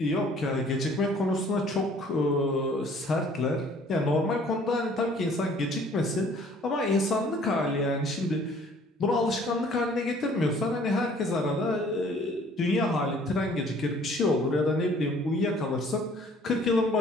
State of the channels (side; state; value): both; normal; correlation 0.56